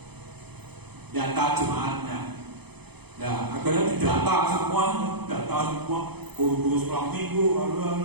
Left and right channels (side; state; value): left; late; 0.98 ms